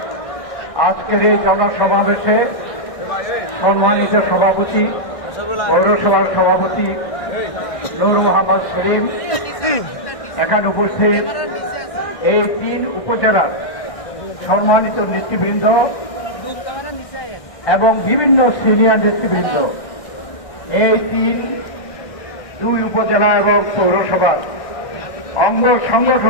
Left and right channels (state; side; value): late; right; 1.6 ms